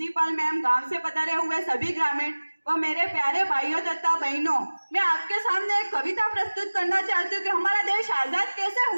मैम, गांव से पधारे हुए सभी ग्रामीण और मेरे प्यारे भाइयों तथा बहनों, मैं आपके सामने एक कविता प्रस्तुत करना चाहती हूँ कि हमारा देश आजाद कैसे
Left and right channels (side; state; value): both; inverted; correlation -1.00